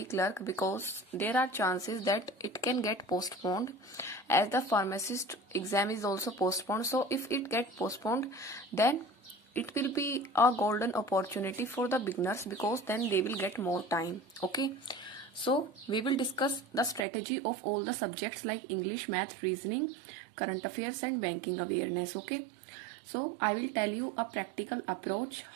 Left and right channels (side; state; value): left; drops out; at 17.0 s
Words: clerk, because there are chances that it can get postponed, as the pharmacist exam is also postponed. So if it get postponed, then it will be a golden opportunity for the beginners, because then they will get more time. Okay, so we will discuss the strategy of all the subjects like English, math, reasoning, current affairs and banking awareness. Okay, so I will tell you a practical approach